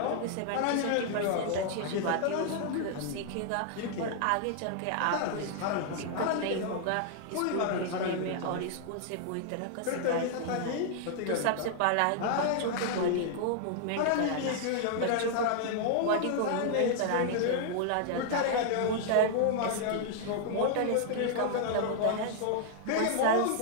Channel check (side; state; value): both; different; correlation -0.01